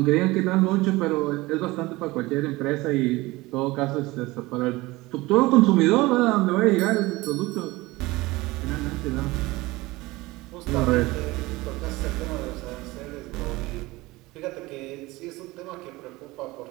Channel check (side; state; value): left; quieter; 20.8 dB